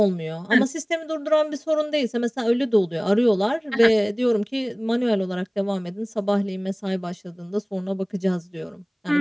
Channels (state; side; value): identical; both; correlation 1.00